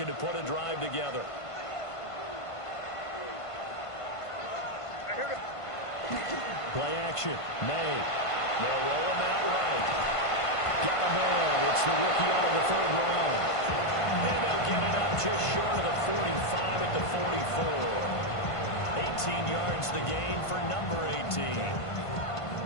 to put a drive together. Play action. May. They'll roll him out right. Got a man. It's the rookie out of the 3rd round. And they'll get it up just short of the 45 at the 44. 18 yards the gain for number 18.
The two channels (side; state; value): right; late; 1.5 ms